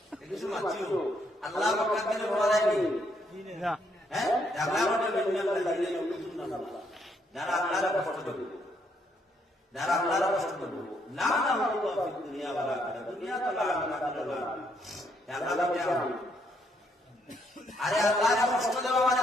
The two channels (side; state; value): both; normal; correlation 0.72